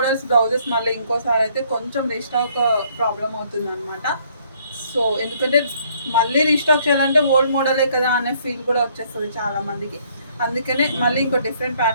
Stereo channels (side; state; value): both; inverted; correlation -0.64